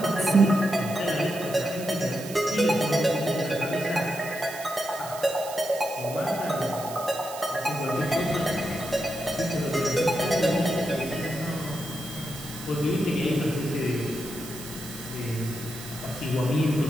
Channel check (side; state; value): right; noise; hiss, 13 dB below the sound